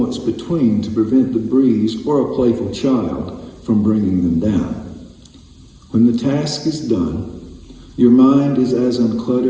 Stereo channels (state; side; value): identical; both; correlation 1.00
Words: between to prevent the breeze or a playful child from bringing them down. When the task is done, your mind is as